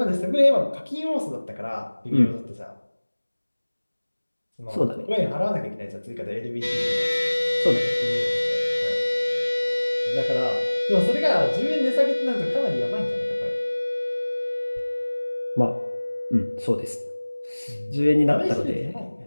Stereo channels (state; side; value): inverted; both; correlation -1.00